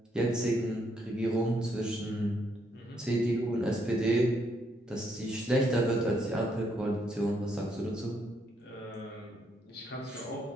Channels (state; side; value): normal; both; correlation 0.74